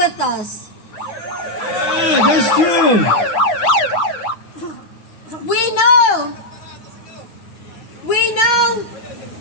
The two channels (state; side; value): late; right; 8.9 ms